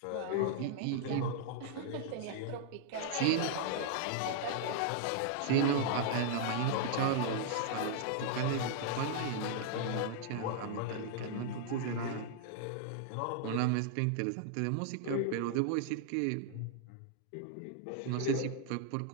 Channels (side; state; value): both; different; correlation -0.01